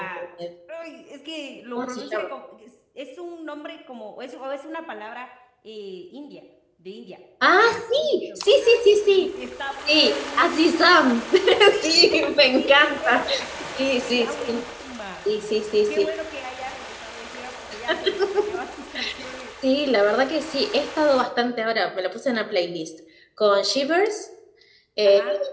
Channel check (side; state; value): both; identical; correlation 1.00